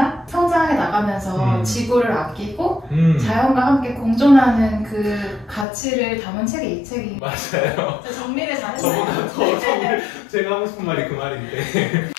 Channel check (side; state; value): right; drops out; at 5.7 s